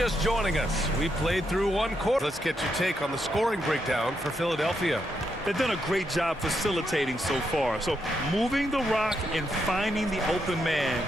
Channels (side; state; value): both; normal; correlation 0.80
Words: joining us, we played through one quarter. Let's get your take on the scoring breakdown for Philadelphia. They've done a great job facilitating so far. So moving the rock and finding the open man,